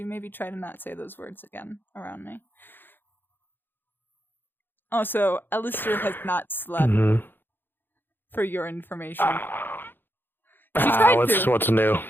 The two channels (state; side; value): late; right; 0.097 ms